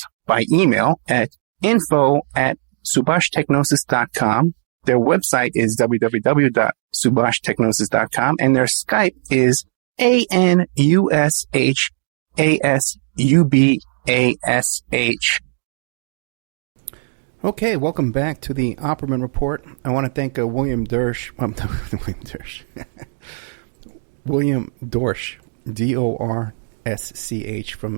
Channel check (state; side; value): silent; left; digital silence